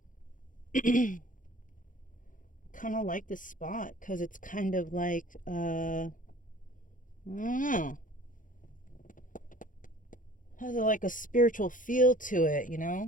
Kind of like this spot because it's kind of like, I don't know. Has like a spiritual feel to it, you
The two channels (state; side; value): late; right; 0.38 ms